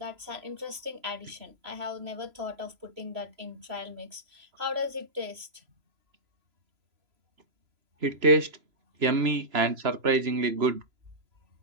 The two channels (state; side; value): late; left; 3.0 ms